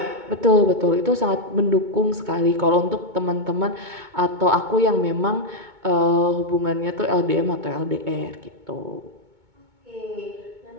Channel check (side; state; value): left; late; 2.2 ms